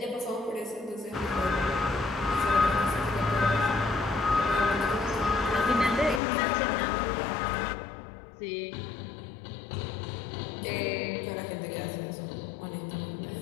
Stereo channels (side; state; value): right; drops out; at 6.2 s